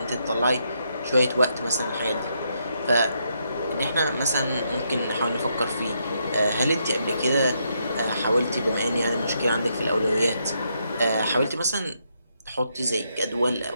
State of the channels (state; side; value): inverted; both; correlation -0.78